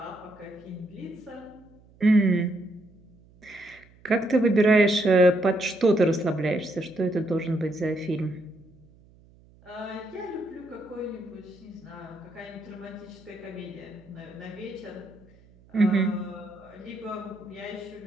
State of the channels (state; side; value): noise; right; hum, 27 dB below the sound